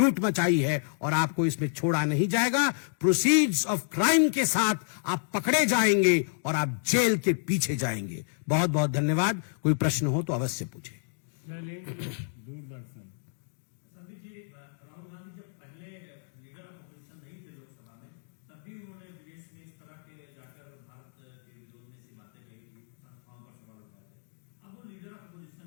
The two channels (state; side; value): silent; right; digital silence